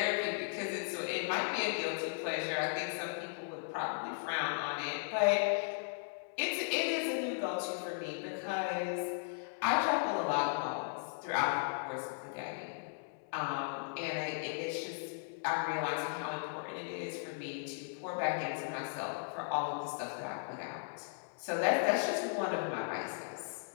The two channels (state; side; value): silent; right; digital silence